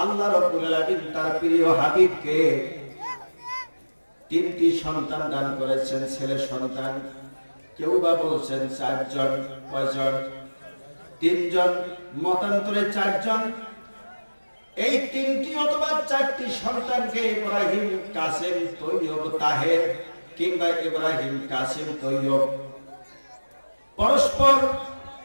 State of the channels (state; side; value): inverted; both; correlation -1.00